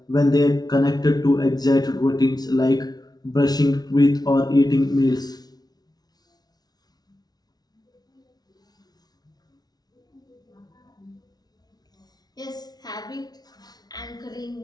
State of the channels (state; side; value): late; right; 0.19 ms